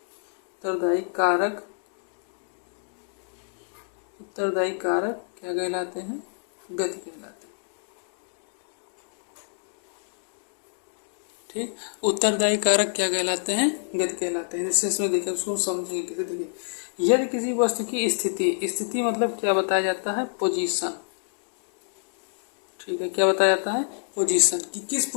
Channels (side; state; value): right; silent; digital silence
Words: कारक क्या कहलाते हैं, गति कहलाते हैं, ठीक। उत्तरदायी कारक क्या कहलाते हैं? गति कहलाते हैं। जैसे इसमें देखिए, उसको समझेंगे कैसे। देखिए, यदि किसी वस्तु की स्थिति मतलब क्या बताया जाता है? पोजीशन। ठीक है, क्या बताया जाता है? पोजीशन, कि किस